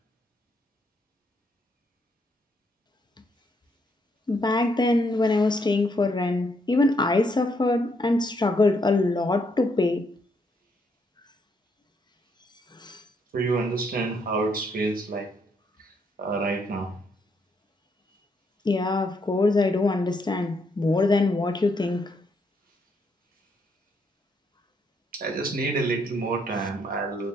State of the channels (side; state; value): both; normal; correlation 0.74